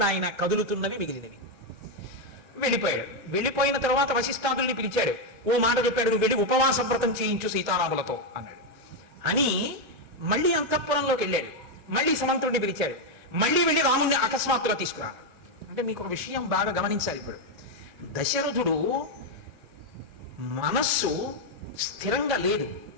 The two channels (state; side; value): normal; both; correlation 0.03